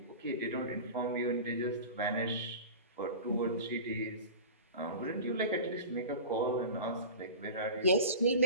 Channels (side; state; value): both; inverted; correlation -0.34